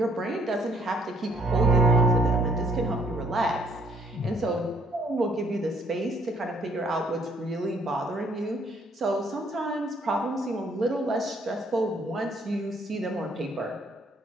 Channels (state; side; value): normal; both; correlation 0.65